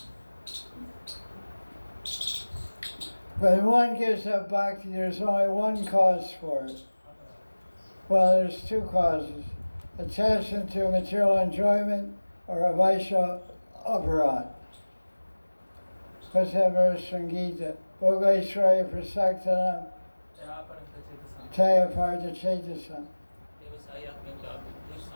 When one gives up bhakti, there's only one cause for it. Well, there's two causes. Attachment to material enjoyment or a vaisha aparad. What's that verse from Gita? Bhogaishraya prasaktanam taya parta chetasam.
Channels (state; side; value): inverted; both; correlation -1.00